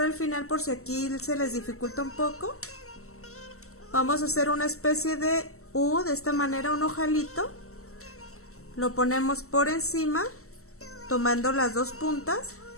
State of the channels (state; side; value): late; right; 0.63 ms